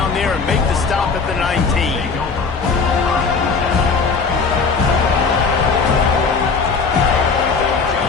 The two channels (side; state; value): right; quieter; 4.8 dB